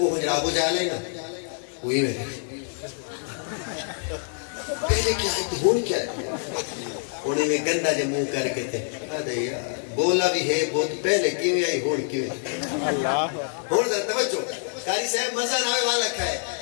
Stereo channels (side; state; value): right; silent; 61 dB below the other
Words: حجر ابو جہل ہے نا وہی میرے پہلے کیا ہے تے ہون کیا ہے انہیں میں گندہ جے منہ کر کے تھے آدھے یار بولا بھی ہے بہت پہلے کیویں آئی ہون کیویں اللہ ہون ذرا توجہ قاری صاحب مزہ ناوے والا کھائے.